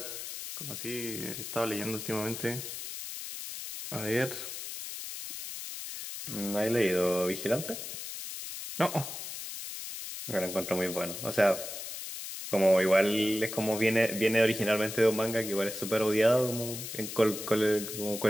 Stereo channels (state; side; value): noise; left; hiss, 8 dB below the sound